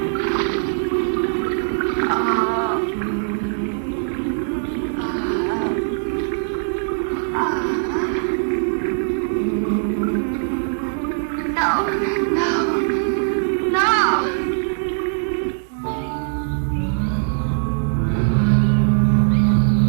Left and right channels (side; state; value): left; silent; digital silence